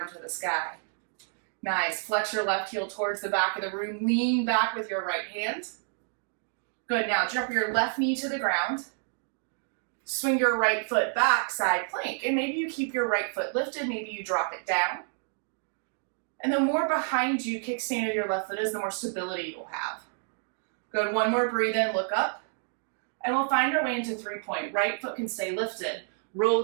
to the sky. Nice, flex your left heel towards the back of the room, lean back with your right hand. Good, now drop your left knee to the ground. Swing your right foot back, side plank, and maybe you keep your right foot lifted, maybe you drop it down. And the more behind you kickstand of your left foot is, the more stability you'll have. Good, one more breathe in, look up. And we'll find our way into 3-point. Right foot can stay lifted.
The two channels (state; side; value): silent; left; 58 dB below the other